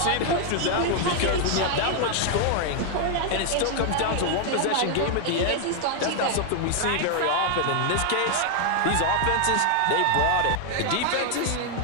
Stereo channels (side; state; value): both; different; correlation 0.00